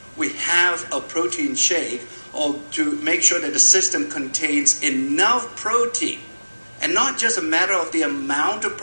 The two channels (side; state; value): both; inverted; correlation -1.00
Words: we have a protein shake, or to make sure that the system contains enough protein. And not just a matter of the amount of